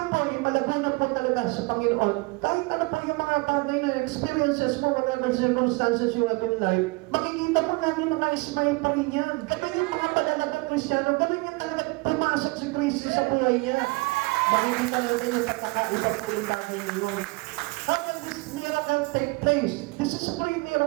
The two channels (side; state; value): left; quieter; 26.3 dB